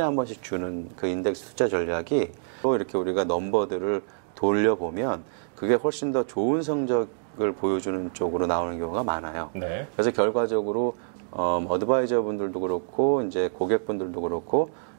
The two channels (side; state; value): left; silent; digital silence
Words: 번씩 주는 그 인덱스 투자 전략이 또 이렇게 우리가 넘버들을 돌려보면 그게 훨씬 더 좋은 성적을 보여주는 쪽으로 나오는 경우가 많아요. 네. 그래서 결과적으로 어드바이저 분들도 그렇고 이제 고객분들도 그렇고